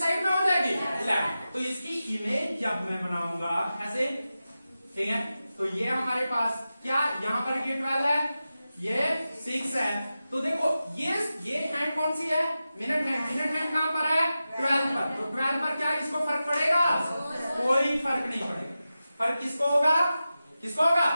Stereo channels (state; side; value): inverted; both; correlation -0.93